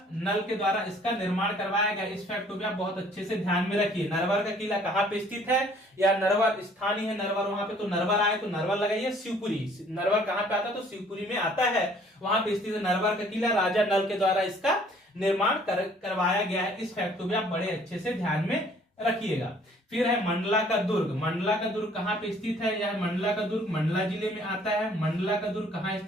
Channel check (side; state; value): both; normal; correlation 0.57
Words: नल के द्वारा इसका निर्माण करवाया गया। इस फैक्ट को भी आप बहुत अच्छे से ध्यान में रखिए। नरवर का किला कहां पे स्थित है, या नरवर स्थान ही है नरवर, वहां पे तो नरवर आए तो नरवर लगाइए। शिवपुरी, नरवर कहां पे आता है, तो शिवपुरी में आता है, वहां पे स्थित है नरवर का किला। राजा नल के द्वारा इसका निर्माण करवाया गया है। इस फैक्ट को भी आप बड़े अच्छे से ध्यान में रखिएगा। फिर है मंडला का दुर्ग। मंडला का दुर्ग कहां पे स्थित है, यह मंडला का दुर्ग मंडला जिले में आता है। मंडला का दुर्ग कहां